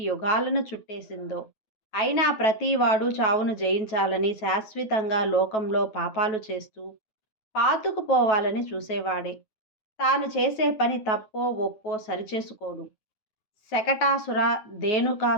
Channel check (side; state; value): right; late; 9.2 ms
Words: యుగాలను చుట్టేసిందో. అయినా ప్రతివాడు చావును జయించాలని శాశ్వతంగా లోకంలో పాపాలు చేస్తూ పాతుకుపోవాలని చూసేవాడే. తాను చేసే పని తప్పో ఒప్పో సరిచేసుకోడు. శకటాసుర,